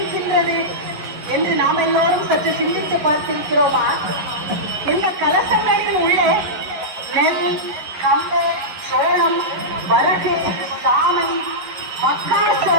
என்று நாம் எல்லோரும் சற்று சிந்தித்து பார்த்திருக்கிறோமா? இந்த கலசங்களில் உள்ளே நெல், கம்பு, சோளம், வரகு, சாமை,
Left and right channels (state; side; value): late; left; 11 ms